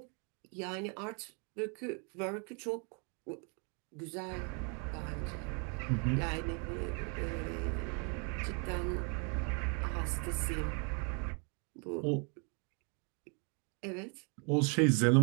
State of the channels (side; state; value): left; quieter; 36.4 dB